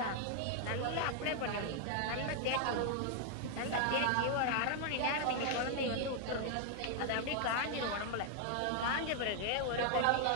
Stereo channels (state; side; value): different; both; correlation 0.00